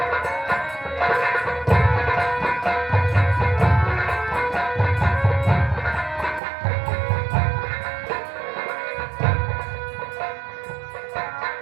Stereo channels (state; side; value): drops out; left; at 6.4 s